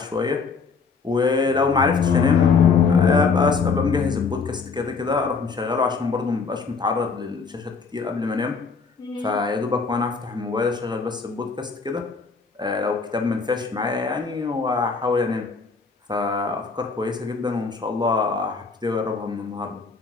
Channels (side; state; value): right; quieter; 4.9 dB